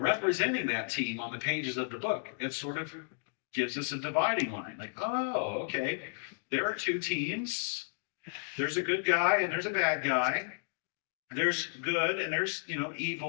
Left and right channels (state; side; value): silent; right; digital silence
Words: that team on the pages of the book, it sort of gives us a dividing line. Like, oh, okay, there are two teams. There's a good guy and there's a bad guy. There's good and there's,